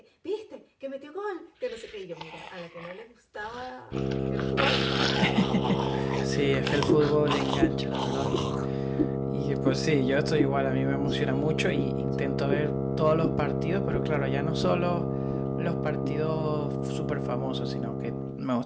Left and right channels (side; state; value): both; identical; correlation 1.00